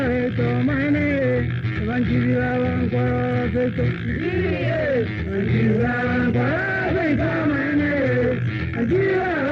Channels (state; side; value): identical; both; correlation 1.00